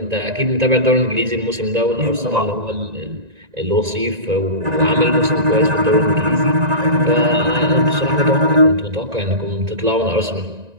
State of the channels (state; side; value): late; left; 1.9 ms